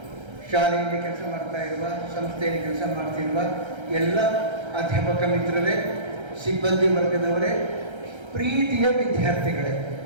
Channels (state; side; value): late; left; 1.3 ms